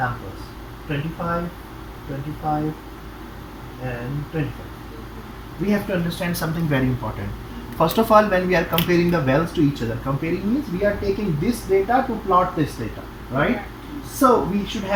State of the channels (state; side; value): identical; both; correlation 1.00